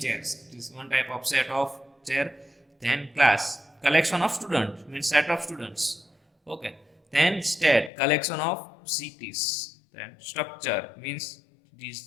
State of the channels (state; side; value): drops out; right; at 7.9 s